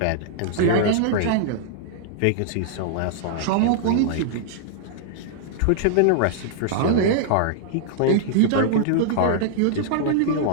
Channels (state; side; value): different; both; correlation -0.01